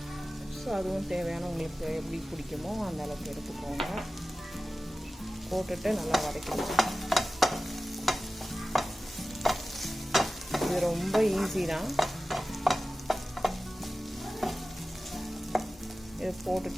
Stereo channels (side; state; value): both; normal; correlation 0.96